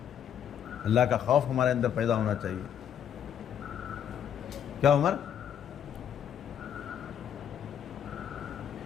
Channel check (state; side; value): quieter; right; 9.1 dB